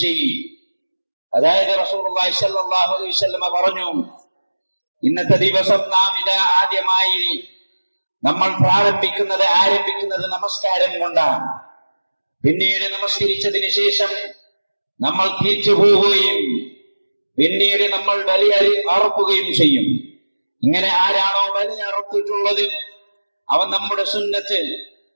شيء. അതായത് റസൂലുള്ളാഹി സ്വല്ലല്ലാഹു അലൈഹി വസല്ലം പറഞ്ഞു, ഇന്നത്തെ ദിവസം നാം ഇതാ ആദ്യമായി നമ്മൾ ആരംഭിക്കുന്നത് നമസ്കാരം കൊണ്ടാണ്. പിന്നീട് നമസ്കരിച്ചതിന് ശേഷം നമ്മൾ തിരിച്ചു പോവുകയും പിന്നീട് നമ്മൾ ബലി അറുക്കുകയും ചെയ്യും. ഇങ്ങനെ ആരാണോ ബലി അറുത്തിട്ടുള്ളത് അവൻ നമ്മുടെ സുന്നത്ത്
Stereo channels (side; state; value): both; inverted; correlation -1.00